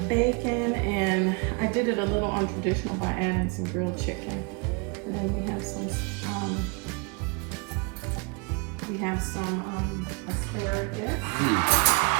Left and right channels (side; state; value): left; quieter; 32.4 dB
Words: bacon, and I did it a little untraditional by adding some grilled chicken. And then we have some asparagus.